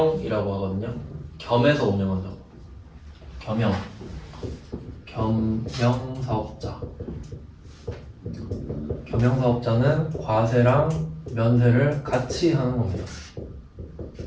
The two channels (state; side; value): identical; both; correlation 1.00